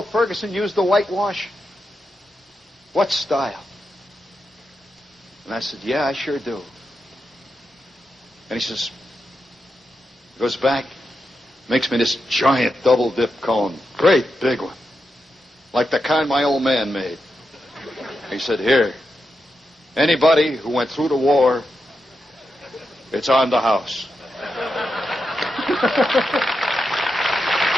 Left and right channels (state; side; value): normal; both; correlation 0.87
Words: Ferguson used the whitewash? What style? And I said, yeah, I sure do. And he says, goes back, makes me this giant double dip cone. Great big one. Like the kind my old man made. He said, here, anybody who went through the war, it's on the house.